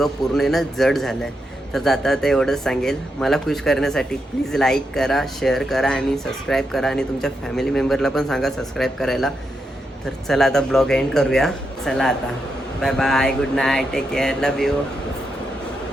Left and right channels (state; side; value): normal; both; correlation 0.84